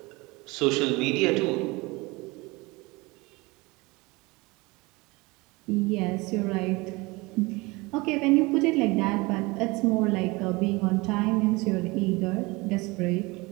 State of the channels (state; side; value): quieter; left; 24.1 dB